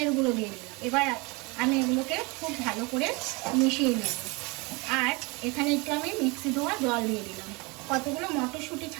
গুঁড়ো দিয়ে দিলাম। এবার আমি এগুলোকে খুব ভালো করে মিশিয়ে নেব। আর এখানে একটু আমি মিক্সি ধোয়া জল দিয়ে দিলাম। কতগুলো মটরশুঁটি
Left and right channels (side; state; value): left; quieter; 27.1 dB